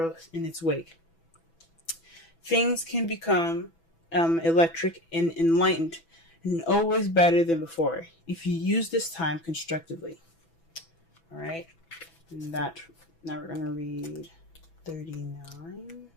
in its wake. Things can become electric and enlightened, and always better than before, if you use this time constructively. Alright, and now we're going to read 39.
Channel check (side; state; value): right; late; 6.0 ms